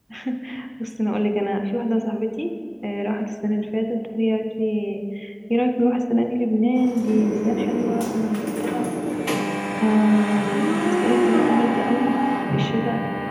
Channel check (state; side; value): identical; both; correlation 1.00